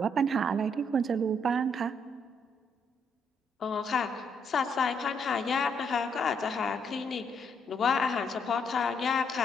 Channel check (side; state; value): both; normal; correlation 0.73